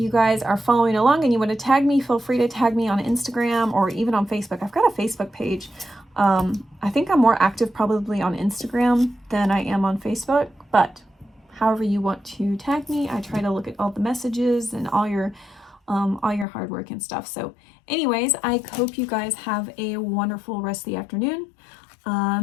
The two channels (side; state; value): right; drops out; at 16.4 s